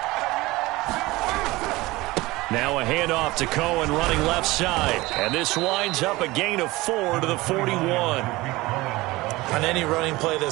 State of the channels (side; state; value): left; quieter; 20.3 dB